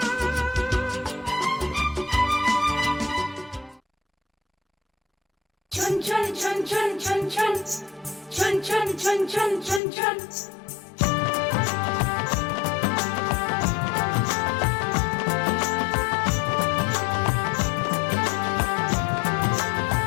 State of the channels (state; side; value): drops out; right; at 9.8 s